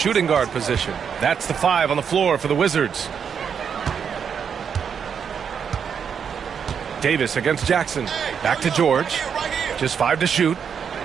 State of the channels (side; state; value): left; quieter; 7.2 dB